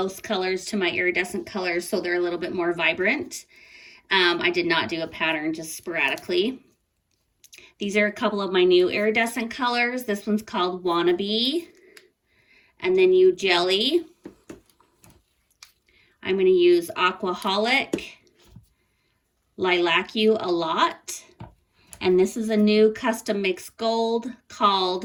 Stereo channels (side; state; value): both; identical; correlation 1.00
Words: colors to my iridescent colors so they're a little bit more vibrant. I did not do a pattern, just sporadically. These are a couple of my new iridescent colors. This one's called Wannabe, and then you Jelly. I'm going to use Aquaholic, Lilac You a Lot, and this is a new custom mixed gold